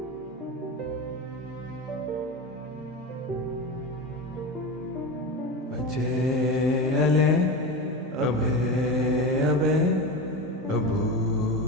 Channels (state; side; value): normal; both; correlation 0.23